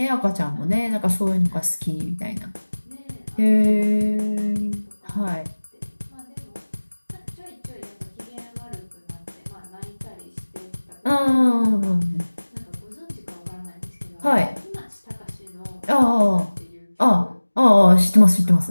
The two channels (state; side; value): inverted; both; correlation -1.00